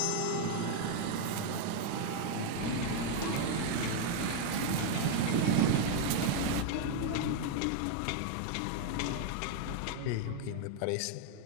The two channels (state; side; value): different; both; correlation 0.00